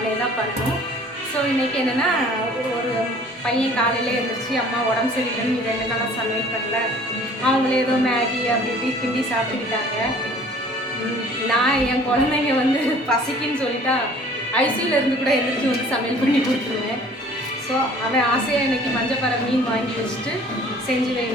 தான் பண்ணணும். ஸோ இன்றைக்கி என்னென்னா, ஒரு பையன் காலையில் எழுந்திரிச்சு அம்மா உடம்பு சரியில்லைன்னு 2 நாளாக சமையல் பண்ணல, அவங்களே ஏதோ மேகி அப்படி இப்படி கிண்டி சாப்பிட்டுக்கிட்டாங்க. நான் என் குழந்தைங்க வந்து பசிக்குன்னு சொல்லிட்டா ஐசியூவில் இருந்து கூட எழுந்திரிச்சு வந்து சமையல் பண்ணி கொடுத்துருவேன். ஸோ அவன் ஆசையாக இன்றைக்கி மஞ்சப்பாறை மீன் வாங்கி வச்சுட்டு செஞ்சு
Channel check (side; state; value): both; normal; correlation 0.51